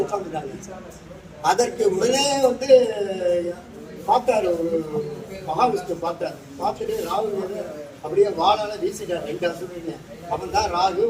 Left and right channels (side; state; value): both; identical; correlation 1.00